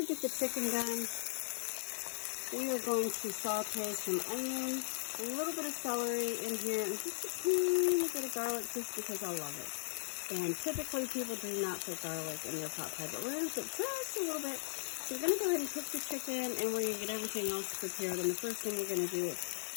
get the chicken done, we are going to saute some onion, a little bit of celery in here, and just a teeny bit of garlic just because I love it. And typically people do not put garlic in their pot pie, but we're going to put just a little bit. So we're going to go ahead and cook the chicken, and we're going to get everything else prepared. And the first thing we're going to do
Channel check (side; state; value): right; silent; 53 dB below the other